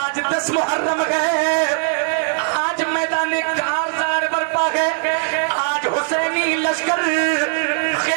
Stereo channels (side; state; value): left; silent; digital silence